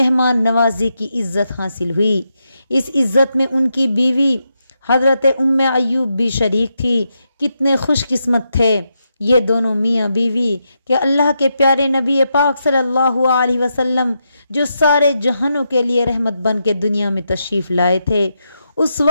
نوازی کی عزت حاصل ہوئی۔ اس عزت میں ان کی بیوی حضرت ام ایوب بھی شریک تھی۔ کتنے خوش قسمت تھے یہ دونوں میاں بیوی کہ اللہ کے پیارے نبی پاک صلی اللہ علیہ وسلم جو سارے جہانوں کے لیے رحمت بن کے دنیا میں تشریف لائے تھے، اس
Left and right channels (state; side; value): inverted; both; correlation -0.84